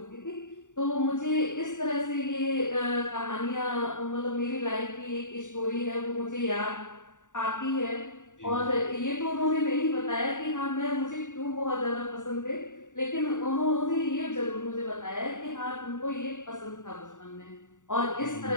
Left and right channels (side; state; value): right; late; 0.86 ms